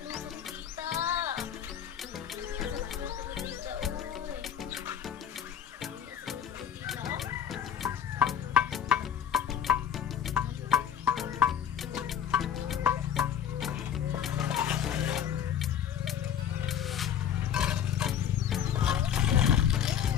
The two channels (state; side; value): quieter; right; 9.1 dB